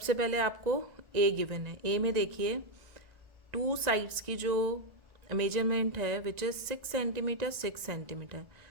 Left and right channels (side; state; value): left; late; 1.9 ms